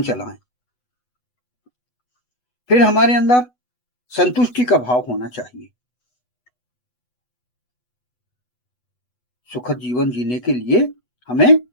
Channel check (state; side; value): late; right; 8.1 ms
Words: चलाएं। फिर हमारे अंदर संतुष्टि का भाव होना चाहिए। सुखद जीवन जीने के लिए हमें